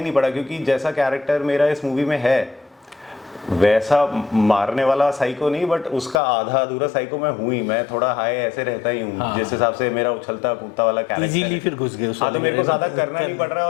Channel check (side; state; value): right; drops out; at 6.2 s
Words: नहीं पड़ा, क्योंकि जैसा कैरेक्टर मेरा इस मूवी में है वैसा मारने वाला साइको नहीं, बट उसका आधा अधूरा साइको मैं हूँ ही। मैं थोड़ा हाई ऐसे रहता ही हूँ, जिस हिसाब से मेरा उछलता कूदता वाला कैरेक्टर इजीली फिर घुस गए हाँ, तो मेरे को ज़्यादा करना नहीं पड़ रहा है,